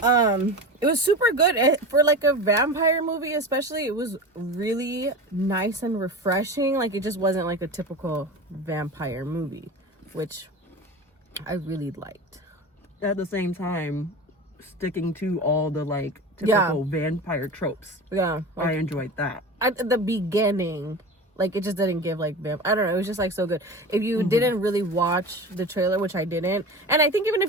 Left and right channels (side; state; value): both; normal; correlation 0.30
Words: It was super good for like a vampire movie, especially. It was really nice and refreshing. Like, it just wasn't like a typical vampire movie, which I really liked. At the same time, sticking to all the like typical vampire tropes. Yeah, I enjoyed that. at the beginning, like, it just didn't give like I don't know, it was just like so good. If you didn't really watch the trailer, which I didn't, and I think even